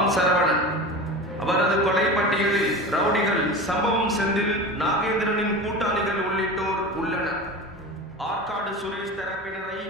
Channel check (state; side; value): normal; both; correlation 0.30